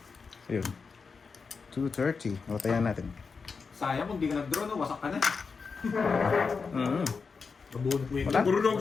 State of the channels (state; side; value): quieter; right; 5.1 dB